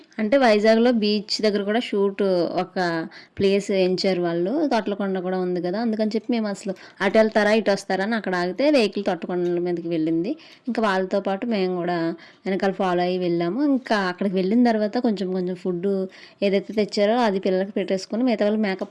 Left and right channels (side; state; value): both; identical; correlation 1.00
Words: అంటే వైజాగ్లో బీచ్ దగ్గర కూడా షూట్ ఒక ప్లేస్ ఎంచారు వాళ్ళు, తొట్లకొండ కూడా ఉంది కదా, అందుకని చెప్పి మేము అసలు అటు వెళ్తారా ఇటు వస్తారా అని అక్కడ ఆగితే వెహికల్ తొట్లకొండల మీదకి వెళ్ళింది. ఇంకా వాళ్ళతో పాటు మేము కూడా వెనకాల ఫాలో అయ్యి వెళ్ళాము. ఇంకా అక్కడికి వెళ్ళిన తర్వాత కొంచెం కొంచెం ఫుడ్ ఏదైతే తెచ్చారో అది పిల్లలకి పెట్టేసుకొని మిగతా వాళ్ళు